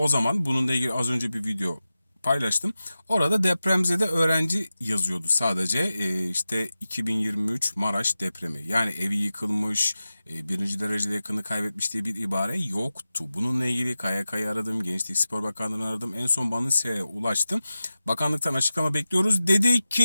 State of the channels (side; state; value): both; inverted; correlation -0.94